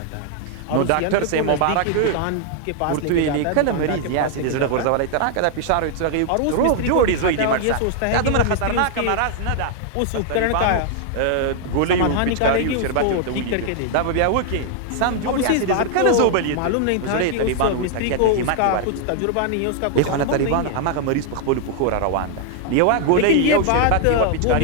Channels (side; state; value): both; different; correlation 0.00